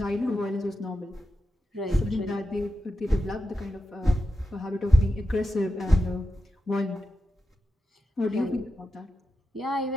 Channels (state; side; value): normal; both; correlation 0.90